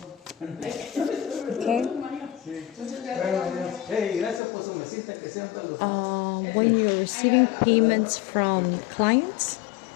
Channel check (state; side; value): drops out; right; at 4.4 s